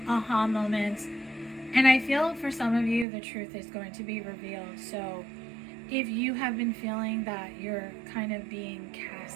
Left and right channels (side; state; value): left; drops out; at 3.1 s